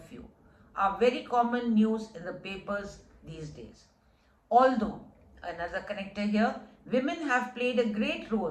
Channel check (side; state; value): both; identical; correlation 1.00